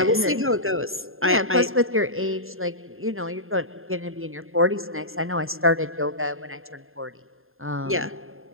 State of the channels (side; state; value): left; late; 0.61 ms